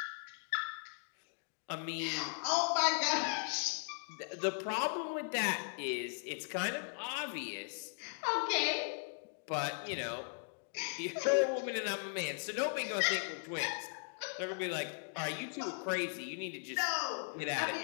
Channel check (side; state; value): right; silent; 53 dB below the other